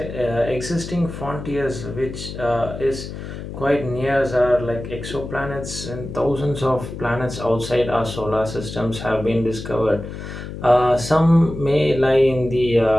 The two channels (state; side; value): noise; left; hum, 9 dB below the sound